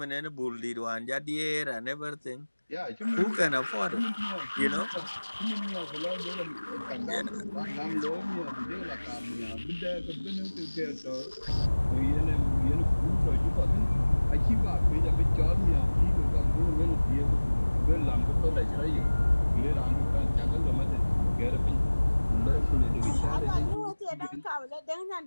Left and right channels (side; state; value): both; inverted; correlation -1.00